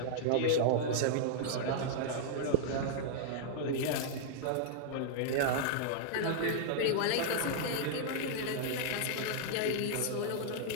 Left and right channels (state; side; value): different; both; correlation -0.01